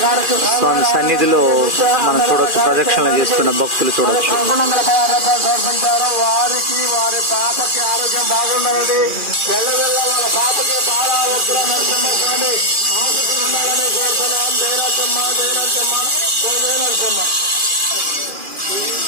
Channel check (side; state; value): left; late; 2.4 ms